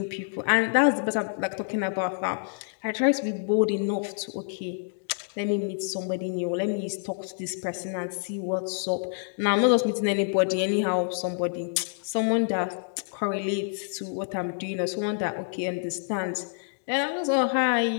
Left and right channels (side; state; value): right; silent; digital silence